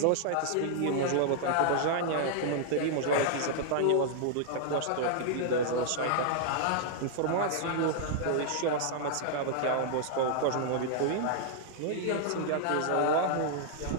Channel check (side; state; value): both; different; correlation -0.01